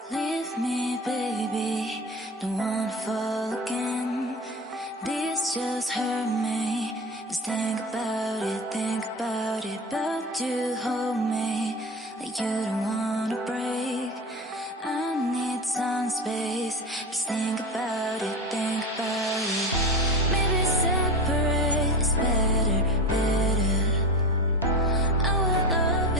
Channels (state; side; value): normal; both; correlation 0.27